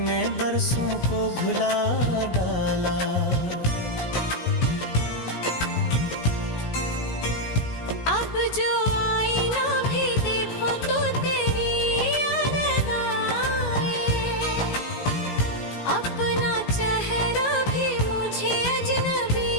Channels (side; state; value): right; late; 17 ms